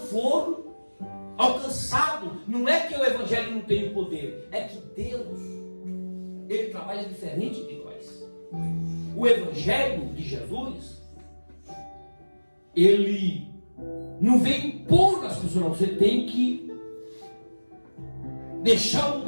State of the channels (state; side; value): inverted; both; correlation -1.00